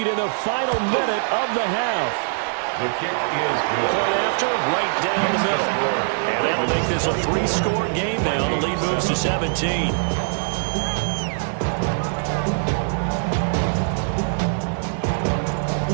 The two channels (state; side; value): silent; left; 64 dB below the other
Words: in the final minute of the half. The kick is good. Point after, right down the middle. And that'll make this a 3-score game now. The lead moves to 17.